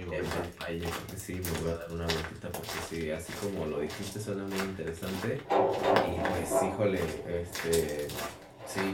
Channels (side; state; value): both; identical; correlation 1.00